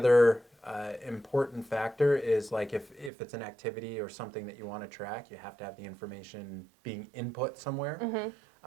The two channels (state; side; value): drops out; left; at 3.1 s